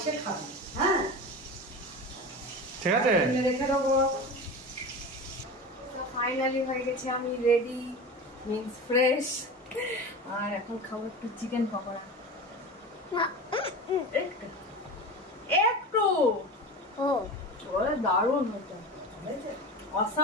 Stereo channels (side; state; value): both; normal; correlation 0.29